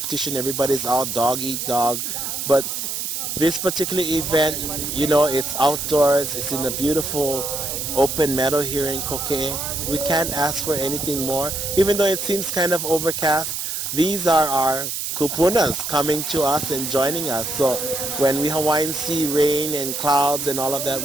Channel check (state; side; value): noise; right; hiss, 3 dB below the sound